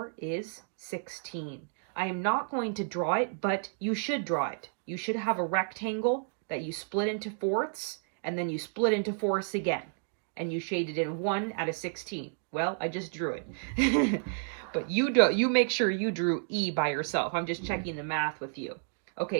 is 16. I am not going to draw it, but you should draw it. You should have a rectangle that you split into fourths, and then you split into fourths again. And you shaded in 1 out of 16. Well, I just drew it. But you make sure you drew E by yourself. I'm just checking the math with you.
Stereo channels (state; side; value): silent; left; digital silence